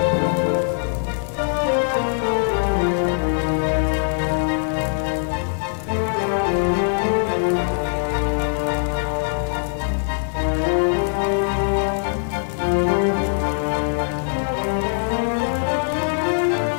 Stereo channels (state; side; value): silent; right; 64 dB below the other